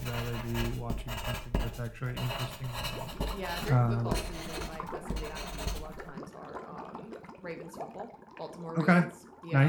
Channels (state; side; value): identical; both; correlation 1.00